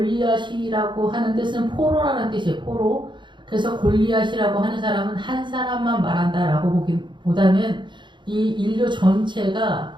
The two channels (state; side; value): late; left; 0.23 ms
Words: 하는 뜻은 포로라는 뜻이에요. 포로. 그래서 골리앗이라고 하는 사람은 한 사람만 말한다라고 보기보다는 이 인류 전체가